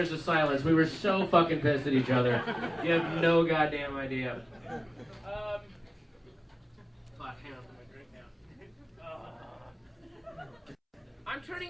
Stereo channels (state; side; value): identical; both; correlation 1.00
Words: of silence. We were so fucking pissed at each other. You have no goddamn idea. I'm